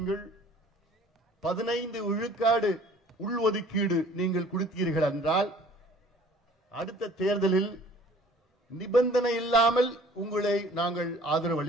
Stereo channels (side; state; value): both; normal; correlation 0.52